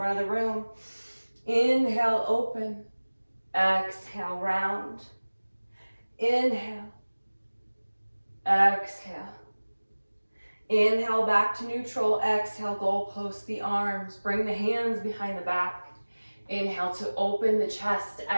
of the room. Inhale, open. Exhale, round. Inhale. Exhale. Inhale, back to neutral. Exhale, goalpost the arms. Bring the hands behind the back. Inhale to open the chest.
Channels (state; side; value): inverted; both; correlation -1.00